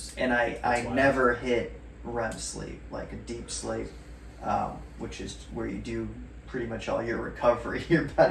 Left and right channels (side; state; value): both; identical; correlation 1.00